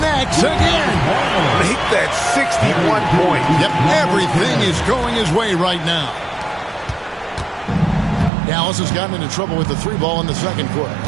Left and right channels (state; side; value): drops out; left; at 8.3 s